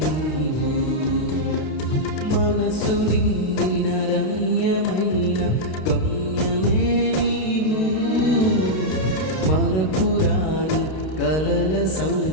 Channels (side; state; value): right; late; 32 ms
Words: నీవు. మనసు నిండిన రమ్యమైన గమ్యమే నీవు, మరపురాని కలల